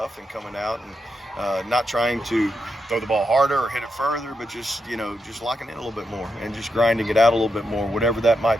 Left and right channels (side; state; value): both; normal; correlation 0.85